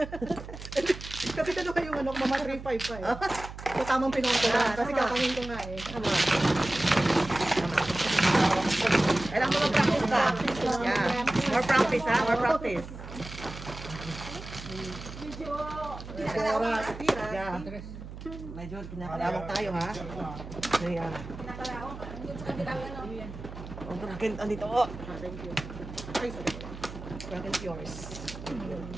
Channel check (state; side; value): noise; right; hum, 12 dB below the sound